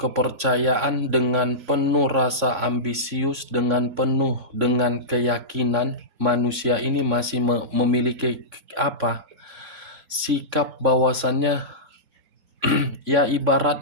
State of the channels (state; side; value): late; left; 3.6 ms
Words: dengan penuh rasa ambisius, dengan penuh dengan keyakinan. Manusia ini masih memiliki sikap bahwasannya ya